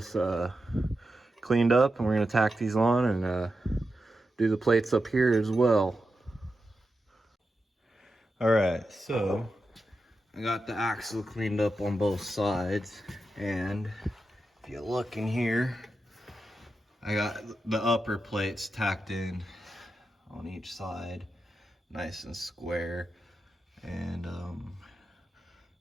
cleaned up, and we're gonna tack these on and do the plates up here as well. All right, so I got the axle cleaned up on both sides, and if you look in here, I got the upper plates tacked in on each side, nice and square. And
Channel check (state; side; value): normal; both; correlation 0.89